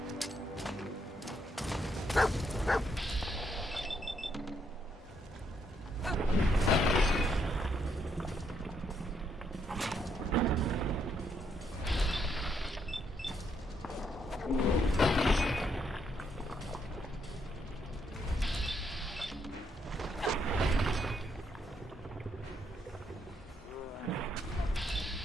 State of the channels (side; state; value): both; normal; correlation 0.75